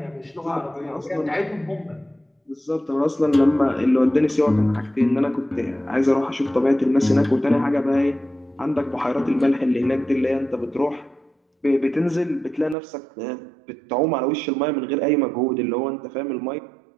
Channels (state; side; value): drops out; left; at 12.8 s